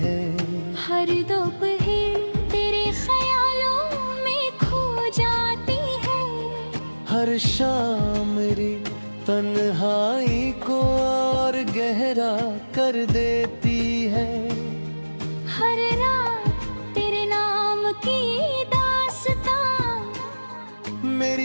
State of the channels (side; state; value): both; inverted; correlation -1.00